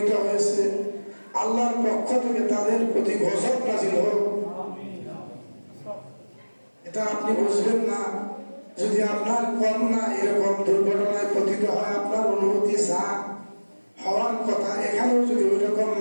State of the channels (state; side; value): inverted; both; correlation -1.00